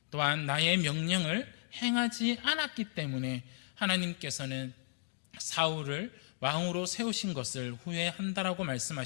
또한 나의 명령을 행하지 않았기 때문에 하나님께서는 사울을 왕으로 세우신 것을 후회한다라고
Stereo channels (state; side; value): silent; right; digital silence